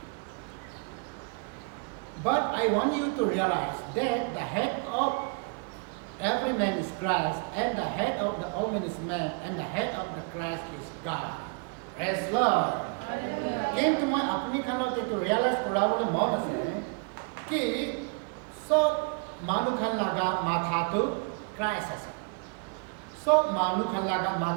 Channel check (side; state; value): left; quieter; 33.8 dB